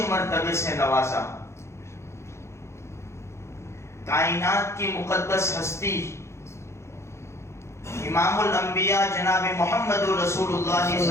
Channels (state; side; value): late; right; 0.13 ms